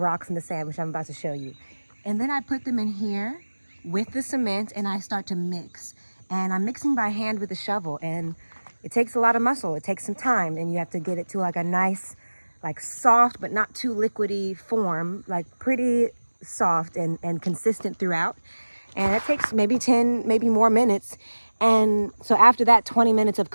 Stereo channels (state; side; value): inverted; both; correlation -1.00